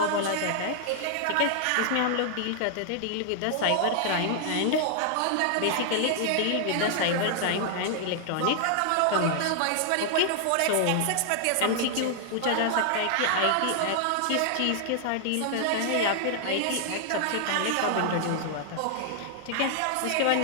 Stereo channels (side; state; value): both; different; correlation -0.01